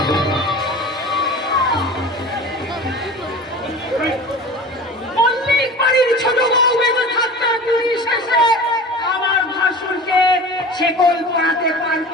মল্লিক বাড়ির ছোট বউ বেঁচে থাকতে পুলিশ এসে আমার ভাসুরকে শেকল পরাতে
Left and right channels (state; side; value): normal; both; correlation 0.36